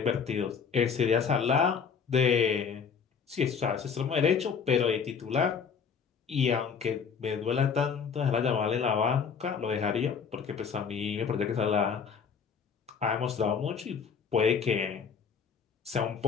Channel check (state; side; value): quieter; right; 6.3 dB